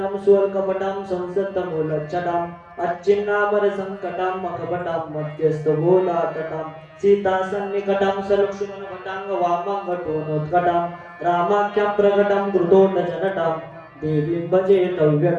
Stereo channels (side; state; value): both; identical; correlation 1.00